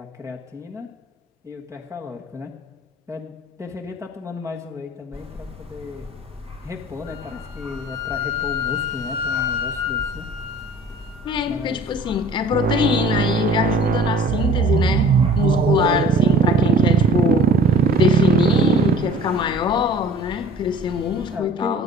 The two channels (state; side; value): normal; both; correlation 0.48